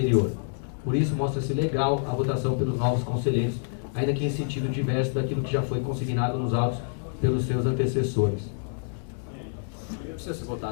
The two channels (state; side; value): silent; right; digital silence